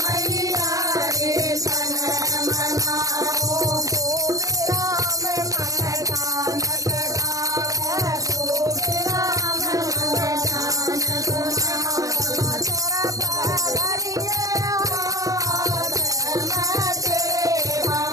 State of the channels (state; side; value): late; left; 0.17 ms